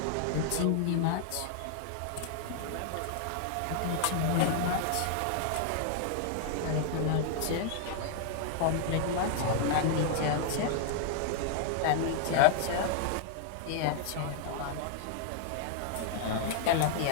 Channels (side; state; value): both; different; correlation -0.01